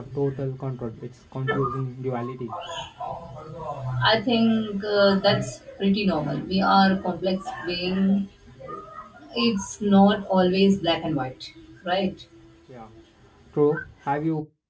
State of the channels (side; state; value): both; identical; correlation 1.00